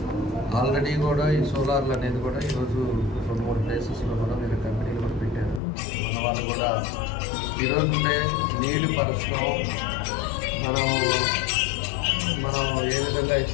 ఆల్రెడీ కూడా ఈ సోలార్లు అనేది కూడా ఈరోజు 2-3 ప్లేసెస్లో కూడా వీళ్ళ కంపెనీలు కూడా పెట్టారు. మన వాళ్ళు కూడా ఈరోజు ఉండే నీటి పరిస్థితులు మనం ఏ విధంగా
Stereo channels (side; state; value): right; drops out; at 5.6 s